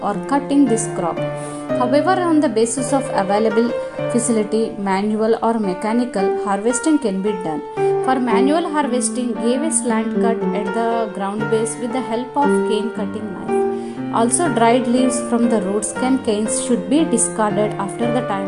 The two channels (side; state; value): both; identical; correlation 1.00